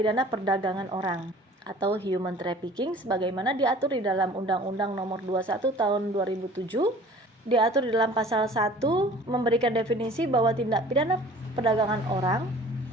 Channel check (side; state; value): both; normal; correlation 0.47